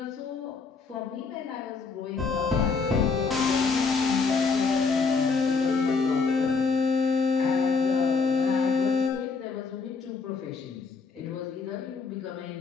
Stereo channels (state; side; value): quieter; right; 4.7 dB